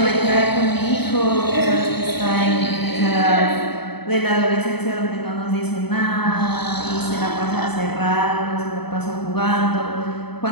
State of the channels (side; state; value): right; late; 0.98 ms